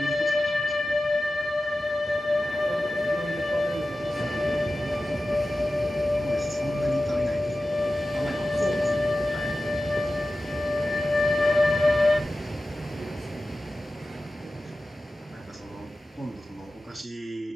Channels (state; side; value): normal; both; correlation 0.94